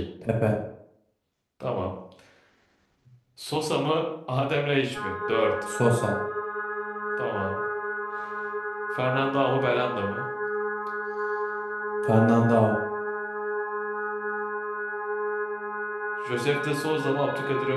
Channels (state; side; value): identical; both; correlation 1.00